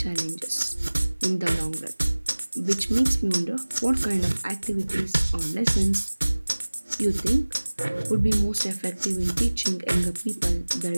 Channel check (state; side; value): inverted; both; correlation -1.00